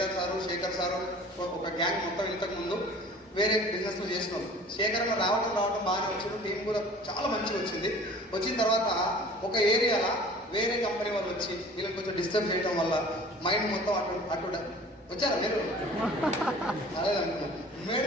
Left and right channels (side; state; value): both; normal; correlation 0.46